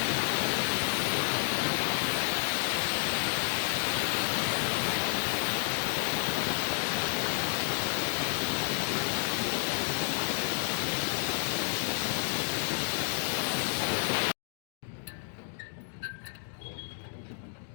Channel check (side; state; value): right; silent; digital silence